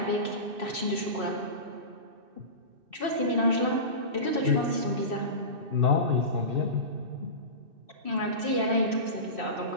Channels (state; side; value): late; left; 2.6 ms